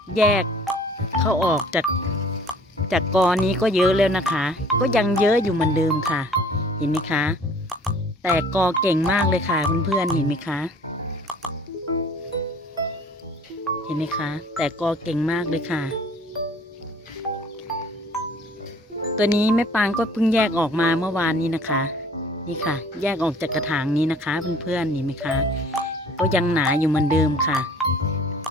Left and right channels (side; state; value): both; normal; correlation 0.52